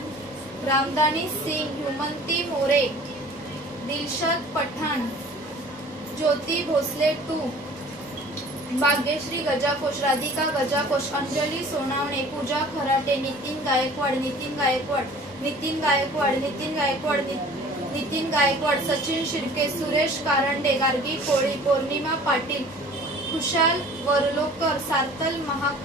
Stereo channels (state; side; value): normal; both; correlation 0.47